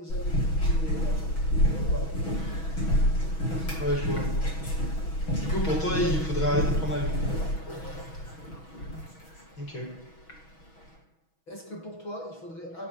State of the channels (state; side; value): late; right; 6.2 ms